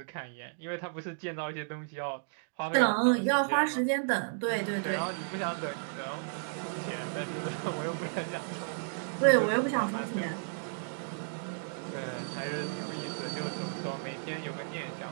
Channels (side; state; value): left; silent; digital silence